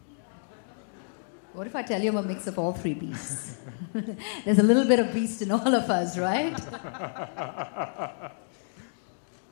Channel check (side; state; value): right; silent; digital silence